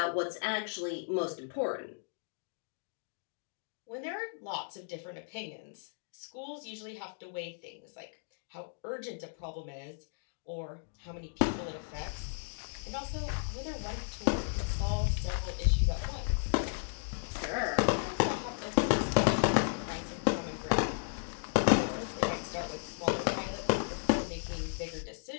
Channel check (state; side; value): silent; right; digital silence